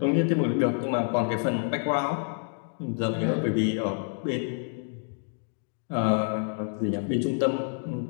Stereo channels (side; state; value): right; silent; 59 dB below the other